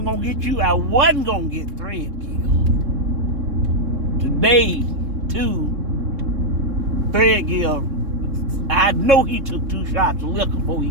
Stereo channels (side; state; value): left; late; 3.6 ms